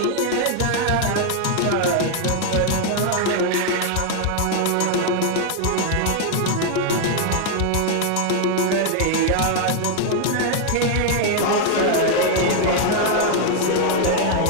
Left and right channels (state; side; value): different; both; correlation 0.00